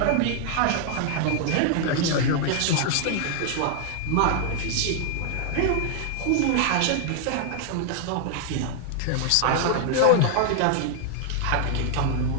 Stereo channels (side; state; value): both; different; correlation 0.00